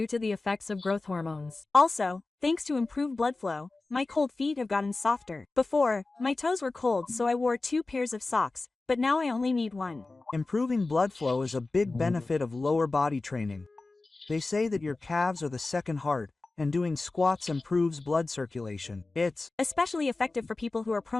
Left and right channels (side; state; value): right; quieter; 3.4 dB